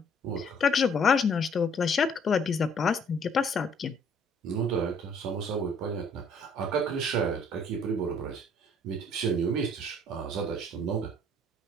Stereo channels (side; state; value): both; normal; correlation 0.60